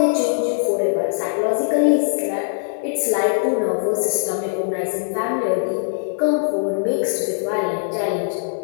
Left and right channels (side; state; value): right; silent; digital silence